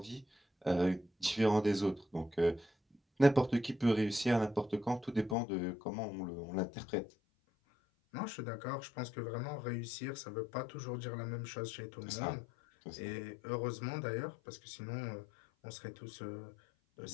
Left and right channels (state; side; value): drops out; right; at 5.4 s